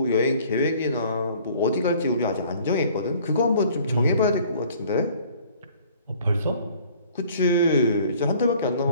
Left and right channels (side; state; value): both; inverted; correlation -0.54